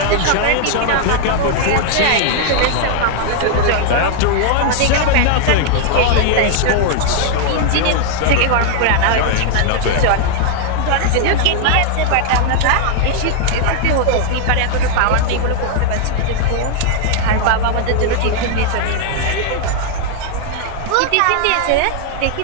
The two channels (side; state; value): both; different; correlation -0.01